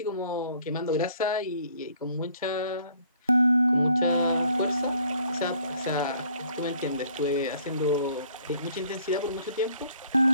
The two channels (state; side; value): inverted; both; correlation -0.59